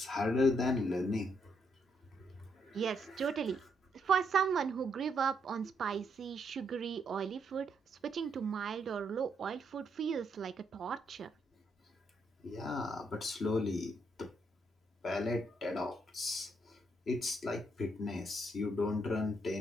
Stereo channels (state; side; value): normal; both; correlation 0.75